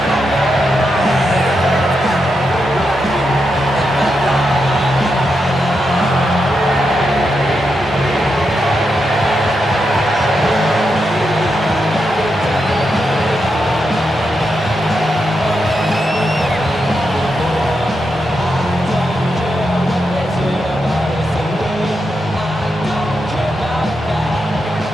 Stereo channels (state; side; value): normal; both; correlation 0.85